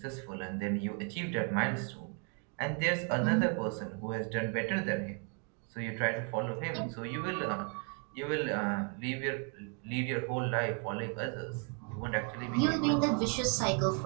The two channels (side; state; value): left; quieter; 38.3 dB